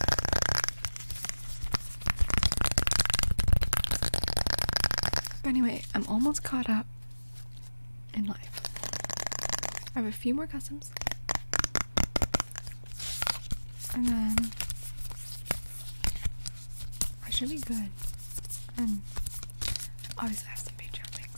Anyway, I'm almost caught up in life. I have a few more customs. And then I should be good. And obviously I have some Patreon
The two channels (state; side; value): inverted; both; correlation -1.00